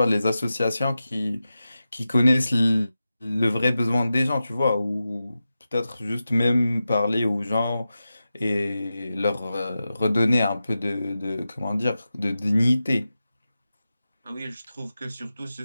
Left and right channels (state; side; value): inverted; both; correlation -0.93